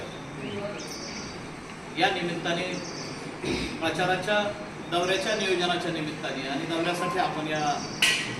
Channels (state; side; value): identical; both; correlation 1.00